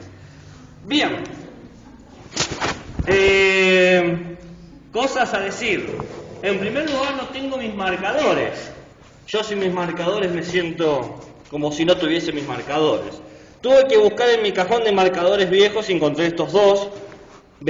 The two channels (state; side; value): identical; both; correlation 1.00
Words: Bien. Cosas a decir. En primer lugar, no tengo mis marcadores. Yo sin mis marcadores me siento como si no tuviese mis marcadores. Tuve que buscar en mi cajón de marcadores viejos y encontré estos dos.